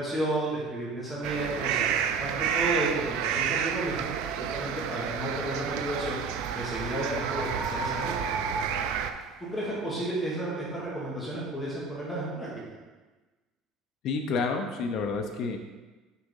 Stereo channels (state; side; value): quieter; left; 3.3 dB